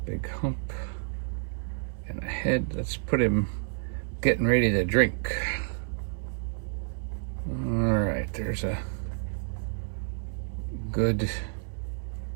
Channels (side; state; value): left; silent; 58 dB below the other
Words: big hump, and a head. Let's put him getting ready to drink. All right, there's a good